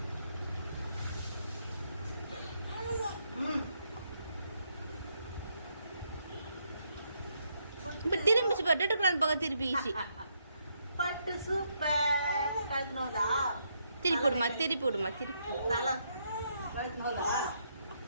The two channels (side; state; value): both; inverted; correlation -0.76